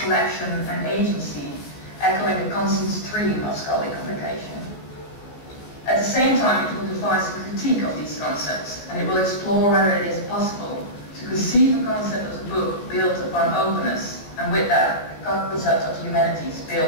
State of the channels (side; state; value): right; late; 15 ms